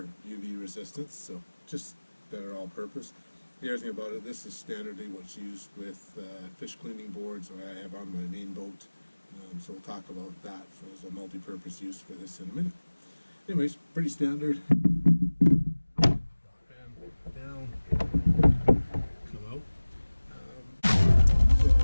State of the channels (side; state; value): both; inverted; correlation -1.00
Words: UV resistance, so just better all-purpose. The other thing about it, this is standardly what's used with fish cleaning boards that I have on my main boat. So we'll talk about that as a multi-purpose use for this in a minute. Anyways, pretty standard. Down, come out. So